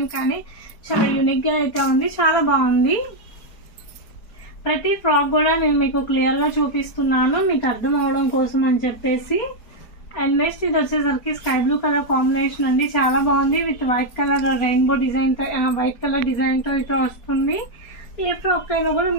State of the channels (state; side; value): late; right; 4.3 ms